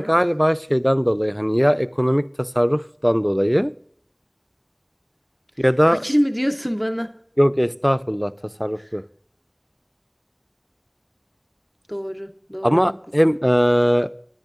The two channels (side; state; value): both; identical; correlation 1.00